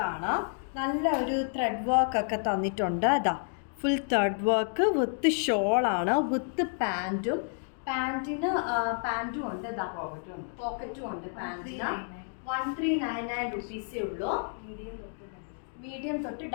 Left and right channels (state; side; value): silent; right; 58 dB below the other